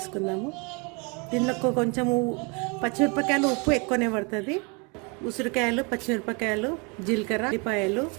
దీనిలో కొంచెము పచ్చిమిరపకాయలు ఉప్పు ఎక్కువనే పడుతుంది. ఉసిరికాయలు, పచ్చిమిరపకాయలు, జీలకర్ర, ఉల్లిపాయలు,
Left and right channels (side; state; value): left; quieter; 31.9 dB